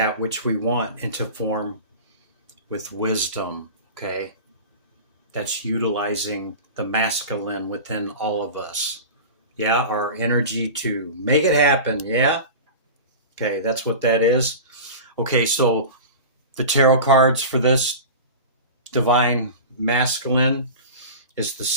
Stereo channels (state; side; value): inverted; both; correlation -0.32